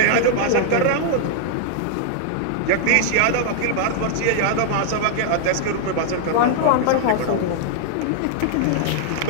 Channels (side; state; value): both; different; correlation -0.01